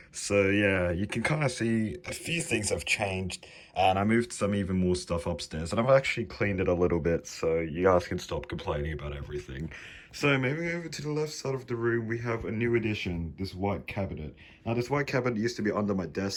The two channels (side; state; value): both; identical; correlation 1.00